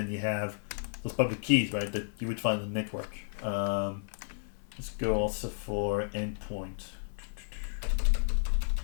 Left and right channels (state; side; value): silent; right; 56 dB below the other